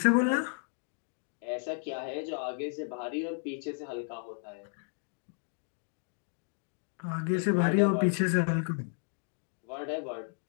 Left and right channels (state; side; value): silent; right; 56 dB below the other